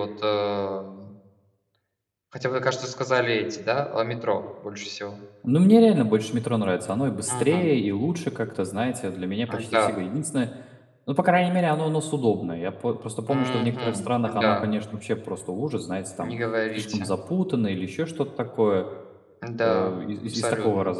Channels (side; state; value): both; identical; correlation 1.00